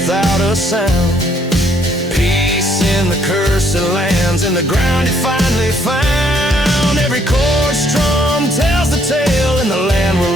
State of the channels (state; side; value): normal; both; correlation 0.67